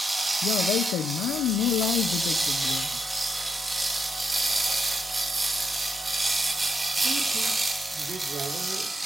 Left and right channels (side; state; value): both; normal; correlation 0.82